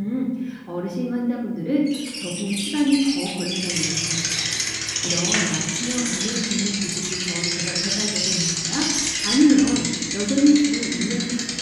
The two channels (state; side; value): identical; both; correlation 1.00